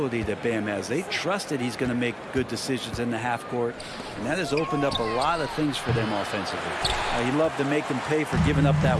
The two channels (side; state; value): both; identical; correlation 1.00